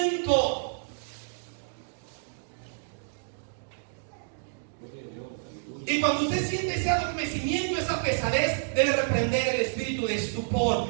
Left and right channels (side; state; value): left; silent; digital silence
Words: Y cuando usted siente ese adormecimiento, esa pesadez, debe reprender el espíritu de